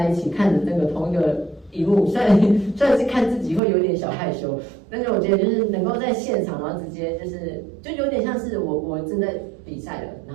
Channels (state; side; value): drops out; left; at 3.6 s